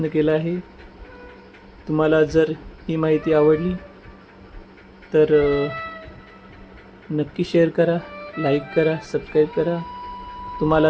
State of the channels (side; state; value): both; identical; correlation 1.00